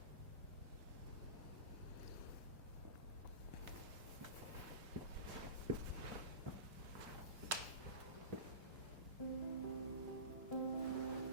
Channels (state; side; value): inverted; both; correlation -0.30